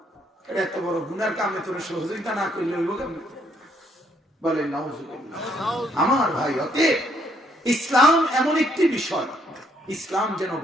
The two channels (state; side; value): normal; both; correlation 0.69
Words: এত বড় গুনার কামে তোর সহযোগিতা না করলে হইব কেমন? বলেন নাউজুবিল্লাহ। আমার ভাই, অতএব ইসলাম এমন একটি বিষয়, ইসলাম যেন